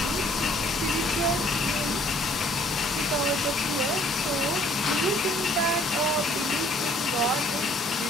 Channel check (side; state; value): both; normal; correlation 0.59